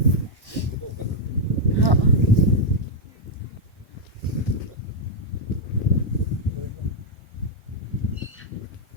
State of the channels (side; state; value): right; late; 1.1 ms